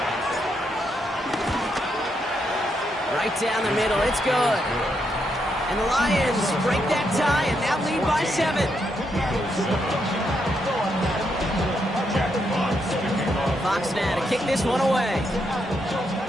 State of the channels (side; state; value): both; normal; correlation 0.79